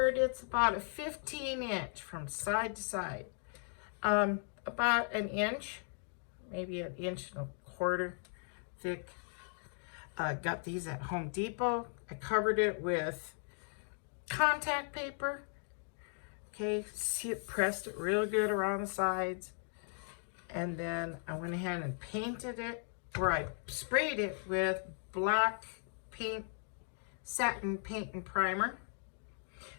It's about a 15-inch from side to side. About an inch, maybe an inch and a quarter thick. Got these at Home Depot. I covered it with contact paper. Okay, see it, pressed it real good around the sides. And then I went ahead and painted it, or I sprayed it with black paint, satin paint and primer.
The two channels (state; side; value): silent; right; 53 dB below the other